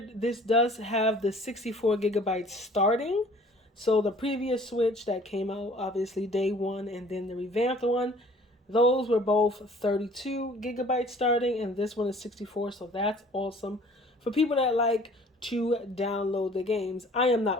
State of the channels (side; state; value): both; normal; correlation 0.52